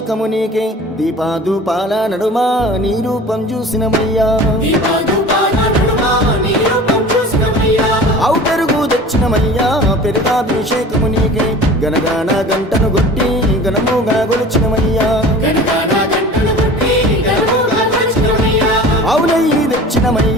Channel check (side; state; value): both; normal; correlation 0.41